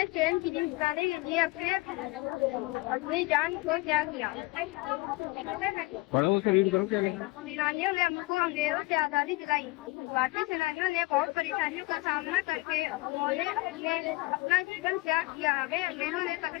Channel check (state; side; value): quieter; right; 22.9 dB